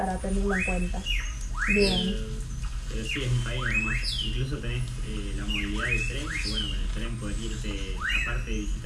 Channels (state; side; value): identical; both; correlation 1.00